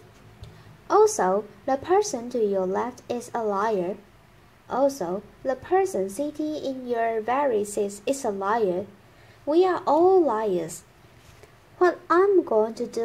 Also, the person to your left is a liar. Also, the person sitting in your very seat is a liar. We are all liars. What I'm going to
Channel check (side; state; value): both; identical; correlation 1.00